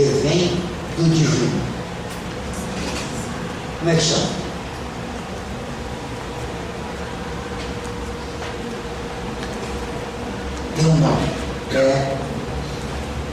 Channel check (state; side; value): identical; both; correlation 1.00